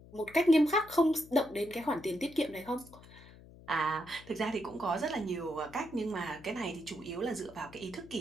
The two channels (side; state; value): left; noise; hum, 20 dB below the sound